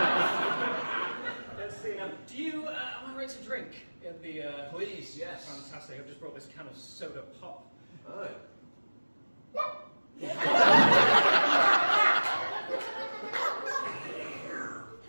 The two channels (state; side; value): inverted; both; correlation -1.00